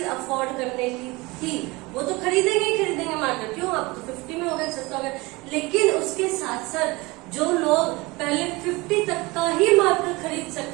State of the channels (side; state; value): left; quieter; 23.4 dB